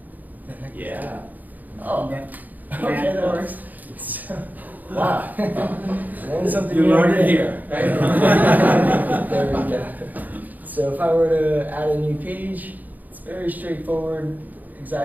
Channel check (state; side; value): late; left; 0.082 ms